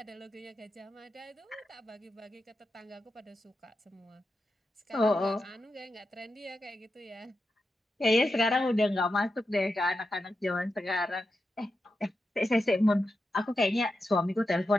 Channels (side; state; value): both; normal; correlation 0.89